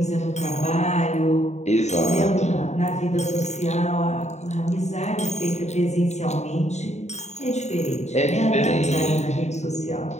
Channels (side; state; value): right; late; 0.33 ms